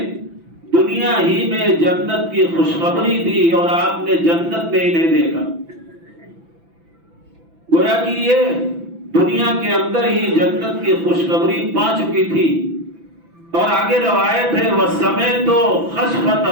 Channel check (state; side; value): late; left; 6.0 ms